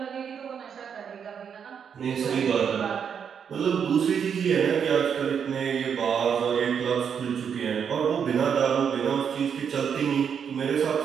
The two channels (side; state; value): left; quieter; 7.4 dB